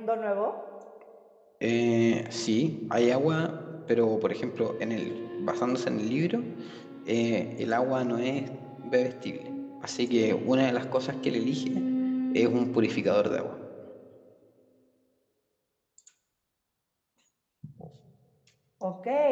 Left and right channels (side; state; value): both; identical; correlation 1.00